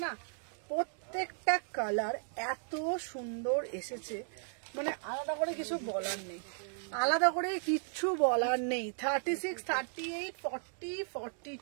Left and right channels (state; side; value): silent; left; 54 dB below the other